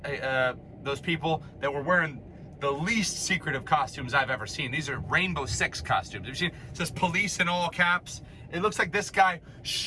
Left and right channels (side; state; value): both; identical; correlation 1.00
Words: those people that were wearing the least secretive costumes I've ever seen. These are Rainbow Six costumes. Have you seen? It says police in all caps. It looks like this guy